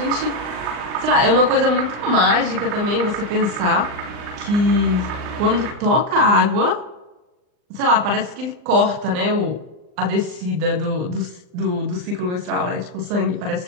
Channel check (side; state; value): left; late; 39 ms